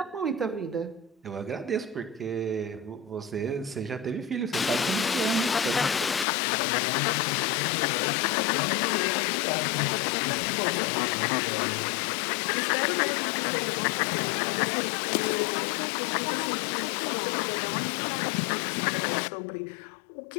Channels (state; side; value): drops out; right; at 6.2 s